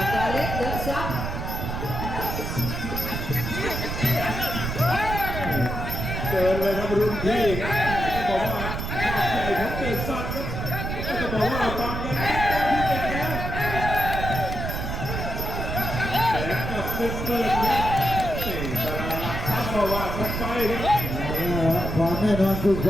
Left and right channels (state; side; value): noise; right; rumble, 4 dB below the sound